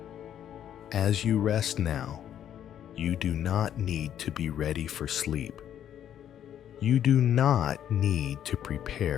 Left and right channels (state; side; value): quieter; right; 10.2 dB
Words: As you rest now, you do not need to be ready for sleep. You do not need to